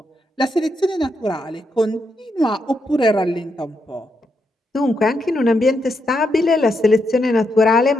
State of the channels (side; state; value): both; normal; correlation 0.81